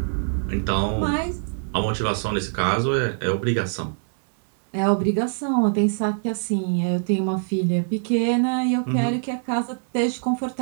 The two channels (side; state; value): left; silent; 63 dB below the other